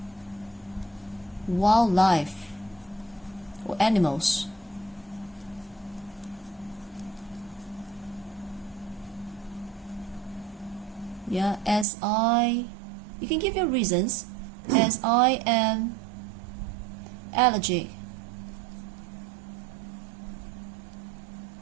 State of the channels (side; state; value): left; drops out; at 11.9 s